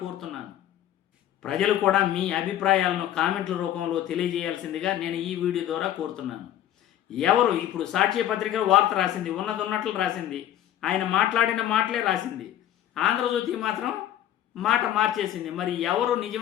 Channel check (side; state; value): right; quieter; 11.8 dB